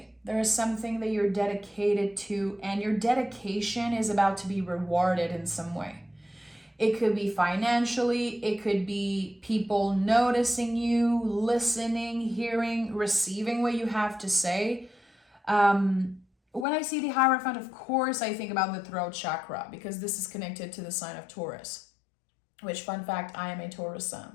There is something that you're dedicated to, and your dedication is about to be rewarded in some way. It could be financially, it could be people noticing you, listening, hearing, receiving what you have to say. When I see the Hierophant, of course, I think about the throat chakra because this is connected to the sign of Taurus. Which, fun fact, I am a Taurus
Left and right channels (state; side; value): drops out; right; at 16.7 s